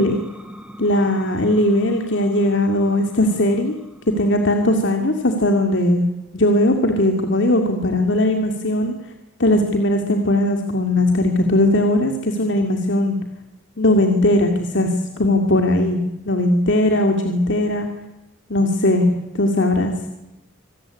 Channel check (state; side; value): normal; both; correlation 0.39